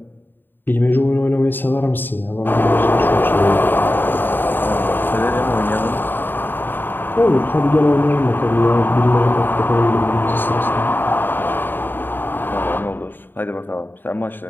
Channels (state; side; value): late; right; 0.094 ms